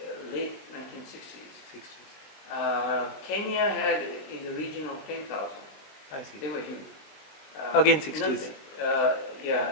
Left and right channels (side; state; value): right; late; 20 ms